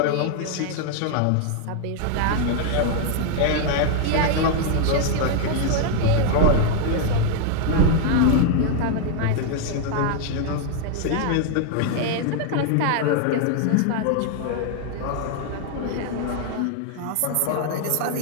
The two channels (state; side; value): different; both; correlation 0.00